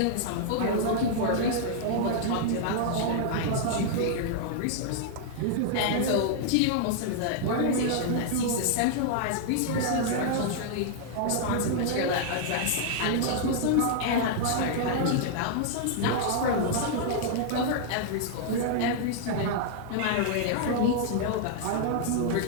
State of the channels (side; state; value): both; different; correlation -0.01